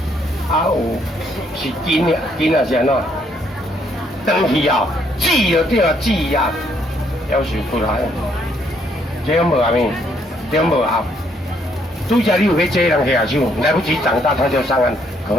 啊有是筋的，筋也是安怎？长去后，挤就对了，挤啊，要求出来，这样无啊咪，这样无啊。拄则你有要借人下手，来不及长大他就上岸，可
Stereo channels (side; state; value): both; normal; correlation 0.70